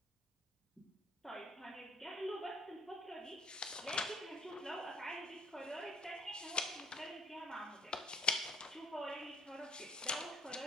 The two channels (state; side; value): normal; both; correlation 0.59